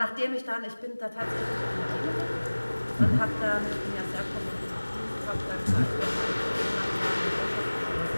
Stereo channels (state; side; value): inverted; both; correlation -1.00